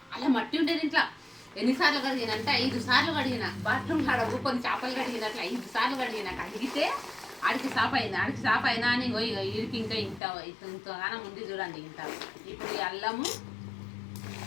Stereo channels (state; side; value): drops out; right; at 10.2 s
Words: మట్టి ఉండేది ఇంట్లో. ఎన్నిసార్లు కడిగిన అంటే 5 సార్లు కడిగిన. బాత్రూమ్ కాడ కొన్ని చేపలు కడిగినట్లు 5 సార్లు కడిగిన. కడిగితే ఆడికి సాఫ్ అయినా అని ఇడికి ఇంకా ఇంతగానం ఉంది చూడండి. ఇంత ఇప్పుడు ఈ అల్లము